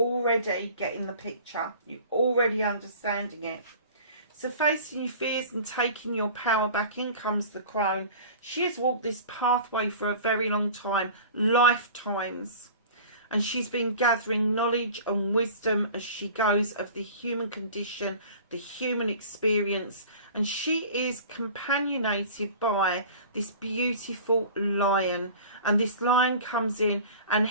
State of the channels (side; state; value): both; inverted; correlation -0.41